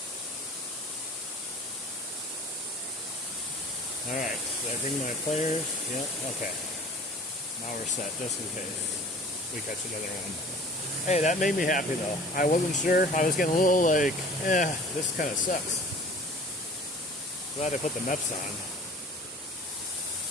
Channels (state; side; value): normal; both; correlation 0.45